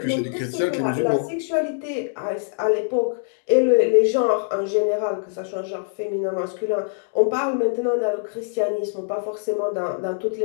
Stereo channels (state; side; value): silent; right; digital silence